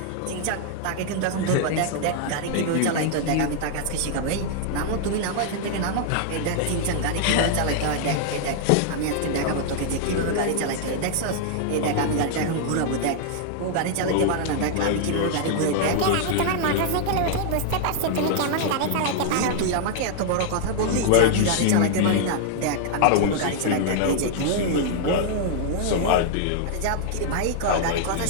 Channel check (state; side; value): different; both; correlation -0.01